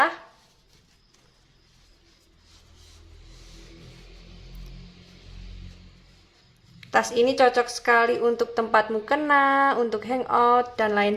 Tas ini cocok sekali untuk tempat mukena, untuk hangout, dan lain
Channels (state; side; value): identical; both; correlation 1.00